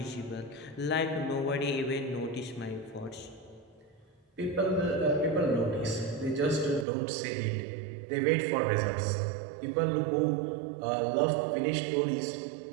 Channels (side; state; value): left; drops out; at 6.9 s